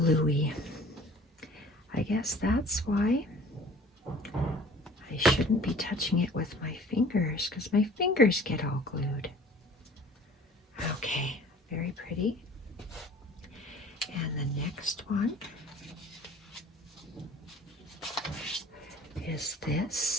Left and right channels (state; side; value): normal; both; correlation 0.48